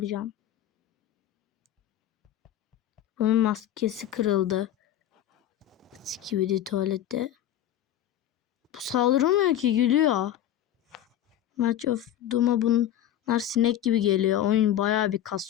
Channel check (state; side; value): quieter; right; 11.5 dB